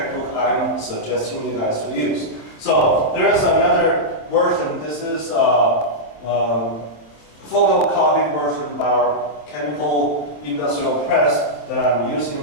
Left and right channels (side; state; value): right; late; 27 ms